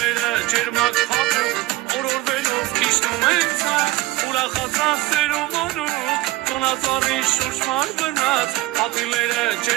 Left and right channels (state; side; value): quieter; left; 18.7 dB